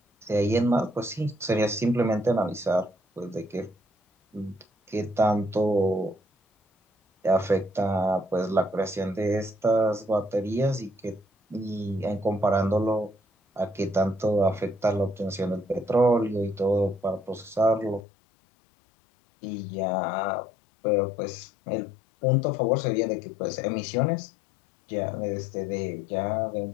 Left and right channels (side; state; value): right; drops out; at 18.0 s